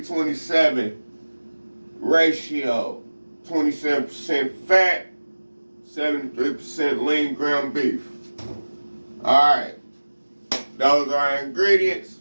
ratio, 27% fat, 73% lean ground beef. All right, those are our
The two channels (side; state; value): both; inverted; correlation -1.00